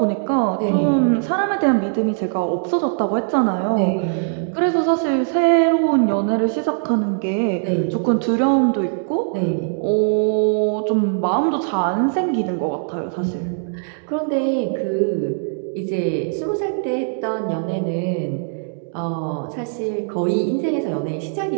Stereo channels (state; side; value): silent; left; digital silence